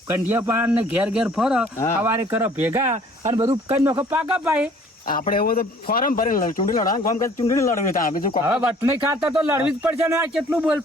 કંઢિયા પાન ને ઘેર ઘેર ફરો હા. સવારે કરો ભેગા અને બધું કઈ નોખો પાકા પાય આપણે એવું તો ફોરમ ભરીને ચૂંટણી લડવાનું કામ કરે ચૂંટણી લડવી ત્યાં બીજું હવે વટણી ખાતા તો લડવી જ પડશે ને આ કેટલું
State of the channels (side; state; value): both; normal; correlation 0.55